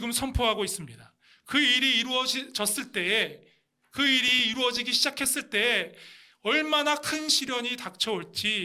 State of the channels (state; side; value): identical; both; correlation 1.00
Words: 선포하고 있습니다. 그 일이 이루어졌을 때에, 그 일이 이루어지기 시작했을 때에 얼마나 큰 시련이